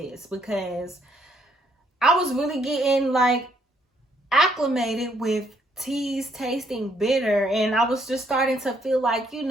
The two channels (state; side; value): normal; both; correlation 0.70